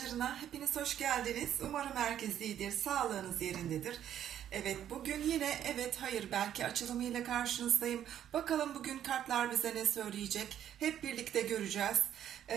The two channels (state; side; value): quieter; left; 10.4 dB